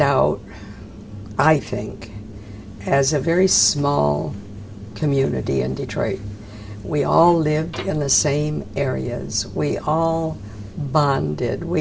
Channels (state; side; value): identical; both; correlation 1.00